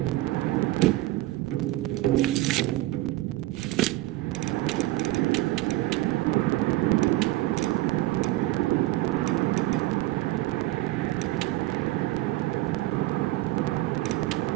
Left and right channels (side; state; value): left; quieter; 18.0 dB